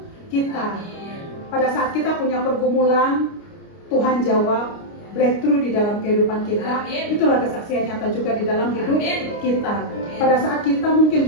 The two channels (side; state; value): right; late; 29 ms